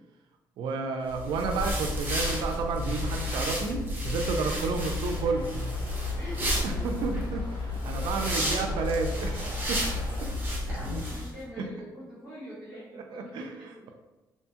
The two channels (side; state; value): both; normal; correlation 0.52